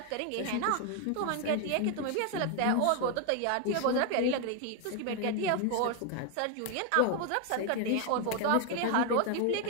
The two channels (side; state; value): both; different; correlation 0.01